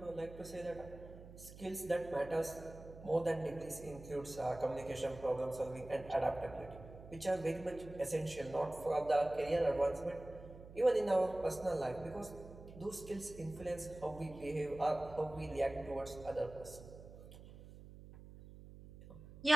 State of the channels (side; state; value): right; noise; hum, 16 dB below the sound